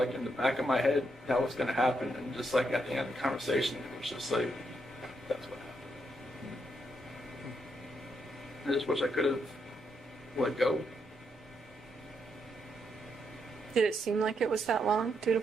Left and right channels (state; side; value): normal; both; correlation 0.79